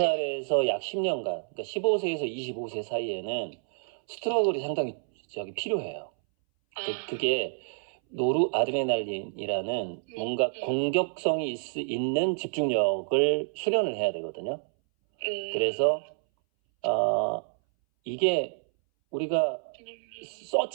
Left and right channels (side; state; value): left; silent; 59 dB below the other